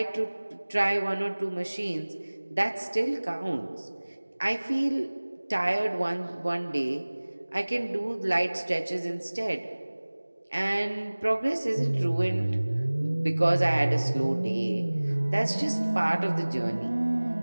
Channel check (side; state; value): both; inverted; correlation -1.00